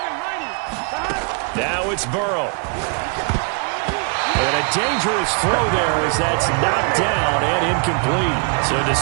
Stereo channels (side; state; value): left; quieter; 37.4 dB